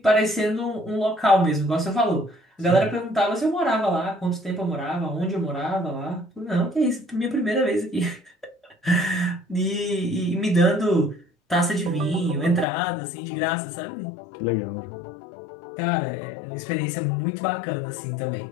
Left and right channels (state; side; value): drops out; right; at 12.7 s